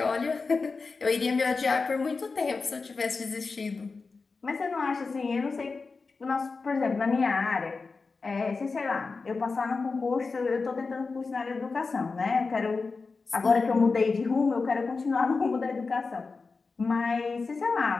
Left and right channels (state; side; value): quieter; right; 4.3 dB